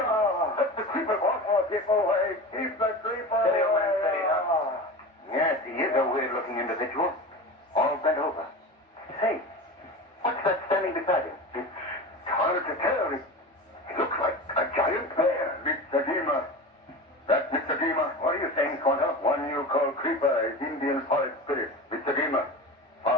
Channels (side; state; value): both; normal; correlation 0.30